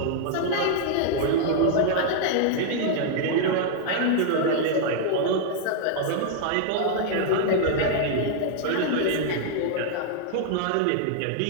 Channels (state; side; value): different; both; correlation -0.01